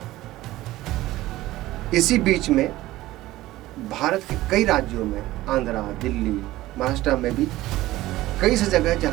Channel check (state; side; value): quieter; left; 16.7 dB